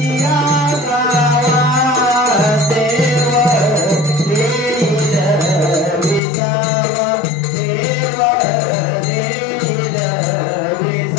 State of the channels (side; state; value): right; drops out; at 6.2 s